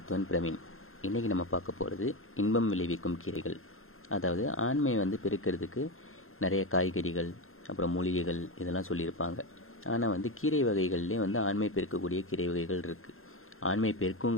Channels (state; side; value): late; right; 0.61 ms